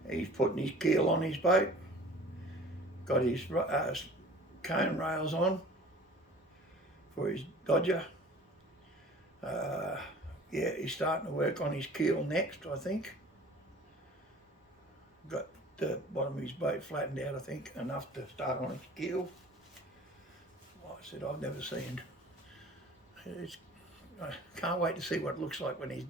He's putting his keel on his boat, got his cone rails on for his Dodger. Yeah, he's starting to work on his keel next, I think. Got the bottom of his boat flattened out, I think, enough to start on its keel. Like I said, I've never seen. I can't wait to see what it looks like when he's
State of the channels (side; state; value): both; normal; correlation 0.46